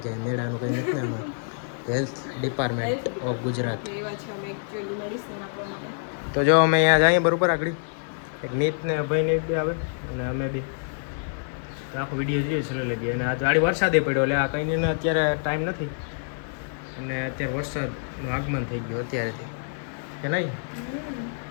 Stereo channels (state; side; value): silent; right; digital silence